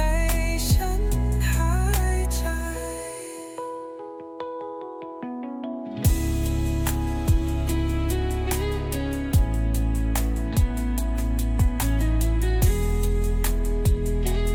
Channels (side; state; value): both; identical; correlation 1.00